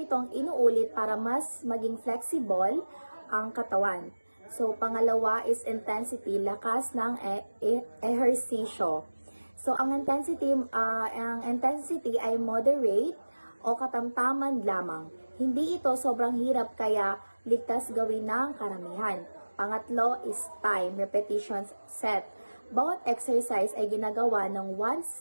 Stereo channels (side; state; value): both; inverted; correlation -1.00